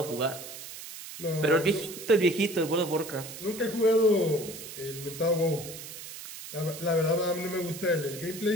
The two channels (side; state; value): right; noise; hiss, 12 dB below the sound